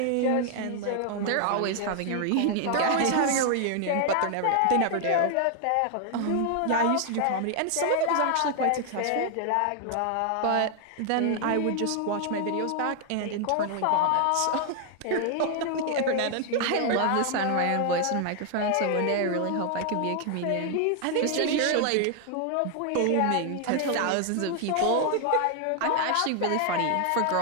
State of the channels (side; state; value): both; different; correlation 0.00